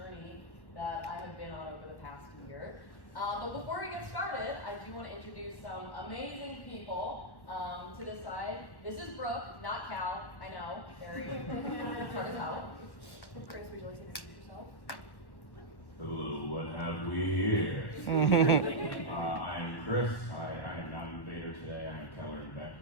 that I have been on over the past year. But before we get started, I do want to introduce some amazing people to this side. This is Brooke, not Cal. I know, very hard as hell. Kris, would you like to introduce yourself? Hello, what have we here? I'm Kris. I am not an invader today. I am Keller and Beck.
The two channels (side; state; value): right; late; 1.1 ms